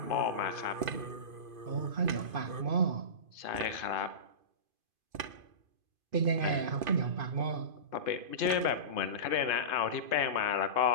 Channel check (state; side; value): late; left; 2.5 ms